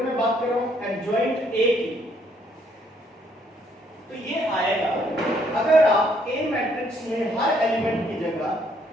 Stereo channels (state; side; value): normal; both; correlation 0.68